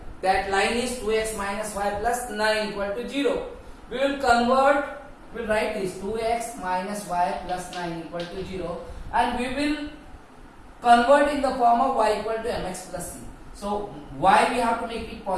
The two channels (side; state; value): both; identical; correlation 1.00